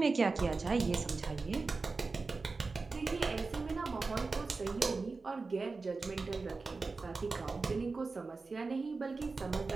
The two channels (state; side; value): quieter; left; 4.0 dB